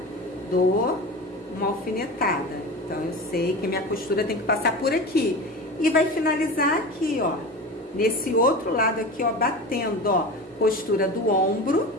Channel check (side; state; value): both; normal; correlation 0.30